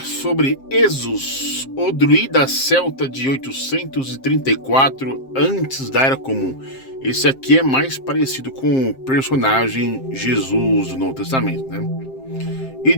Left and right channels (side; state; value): right; late; 7.6 ms